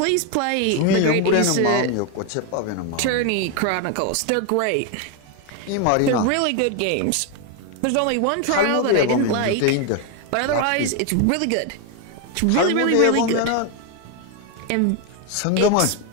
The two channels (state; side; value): different; both; correlation 0.01